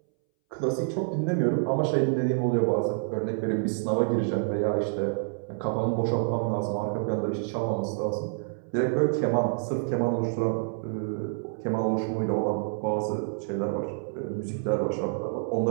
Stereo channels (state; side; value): silent; left; 60 dB below the other